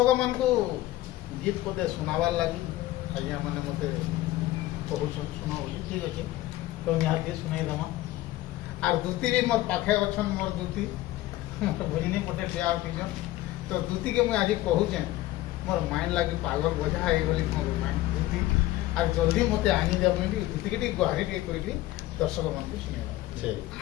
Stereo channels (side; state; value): right; quieter; 16.4 dB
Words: मान को गीत पदे सुनाबार लगी आज्ञा मैंने मत कहून सुना बोली ठीक अच्छे तो यहाँ सुनाई देमा आर दूती भी मोर पाखे अच्छन मोर दूती मोर भरिनी पटे ठिया उठीछन तो दूती के मुझे आज कहूचे मोर माइंड लगी पागल बोझा है बोली मोर माइंड दूती आज जल्दी मते आनी दे बोली दूती के गुहारी टे करी दर्शक मान को सुनिया